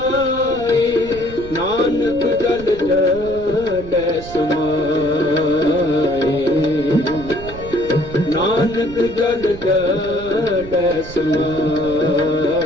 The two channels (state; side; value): noise; right; rumble, 14 dB below the sound